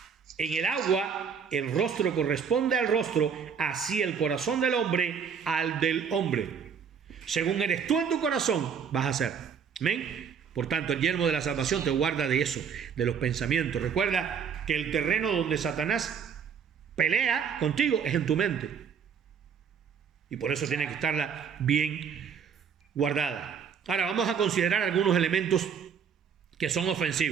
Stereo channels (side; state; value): left; quieter; 7.0 dB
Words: el agua el rostro corresponde al rostro, así el corazón del hombre al del hombre. Según eres tú en tu corazón, vas a ser. ¿Amén? Por tanto, el yelmo de la salvación te guarda de eso, de los pensamientos. Recuerda que el terreno donde Satanás pelea contigo es en tu mente. Y por eso tiene que estarla bien guardada. Ahora vamos a considerar algunos elementos que son